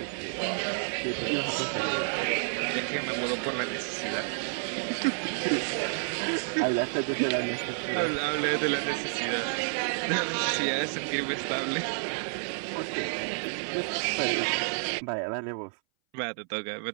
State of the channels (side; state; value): left; silent; 58 dB below the other